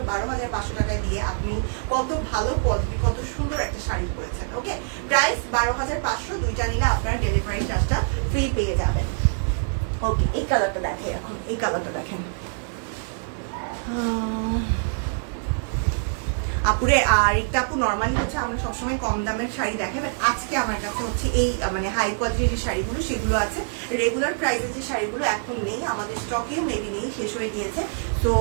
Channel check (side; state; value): left; silent; 62 dB below the other